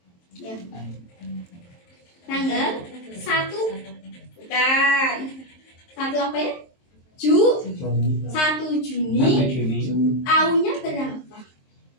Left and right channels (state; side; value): late; right; 23 ms